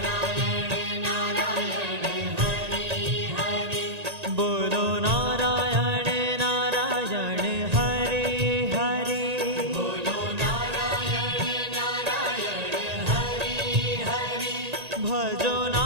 नारायण हरे हरे बोलो नारायण नारायण हरे हरे बोलो नारायण नारायण हरे हरे भजो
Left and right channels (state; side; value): late; left; 1.8 ms